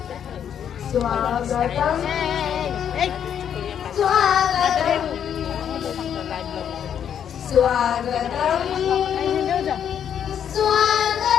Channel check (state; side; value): quieter; right; 8.8 dB